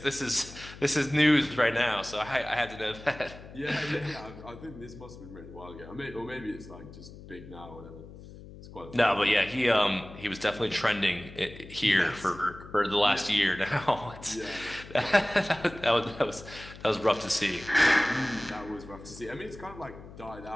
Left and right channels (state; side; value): noise; left; hum, 16 dB below the sound